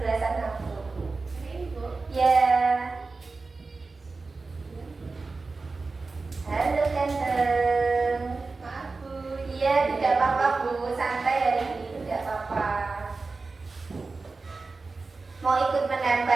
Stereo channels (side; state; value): left; quieter; 3.9 dB